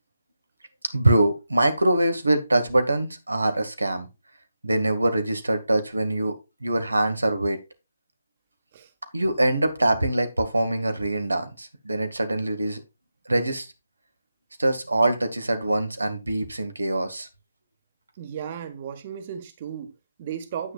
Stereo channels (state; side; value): inverted; both; correlation -0.90